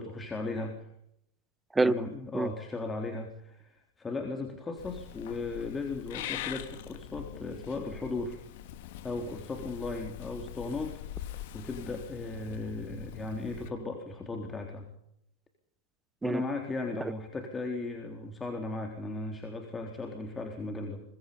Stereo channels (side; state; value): both; normal; correlation 0.64